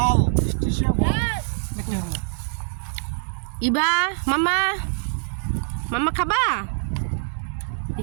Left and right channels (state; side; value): silent; left; digital silence